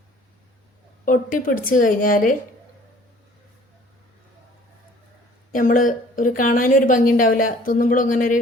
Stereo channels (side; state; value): both; normal; correlation 0.53